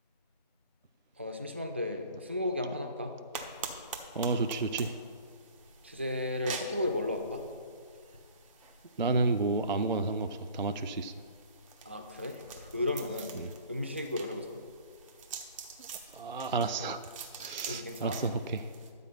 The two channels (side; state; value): both; inverted; correlation -0.46